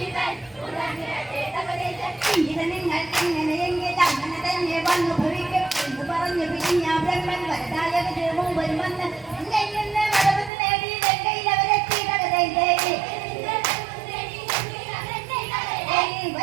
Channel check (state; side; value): drops out; left; at 10.5 s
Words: ഇവൻ ഉണർന്നിടട്ടെ തകടൈതൈ. ഇത് നിങ്ങൾ എങ്ങനെയെങ്കിൽ അങ്ങനെ തന്നെ വന്നു ഭവിക്കും എന്ന് പറഞ്ഞു പിരിഞ്ഞ ബ്രഹ്മൻ വരദായകന് മുമ്പിൽ വന്ന് എങ്കിൽ നിന്ന് വരവത് നേടി ലങ്കയിൽ അവരെത്തി തകടൈതൈ.